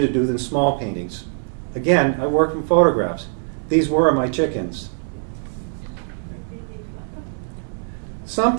do than small paintings. Again, I work from photographs. These were my chickens.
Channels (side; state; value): left; silent; 64 dB below the other